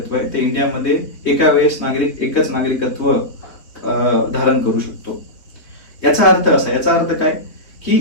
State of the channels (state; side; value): late; right; 3.6 ms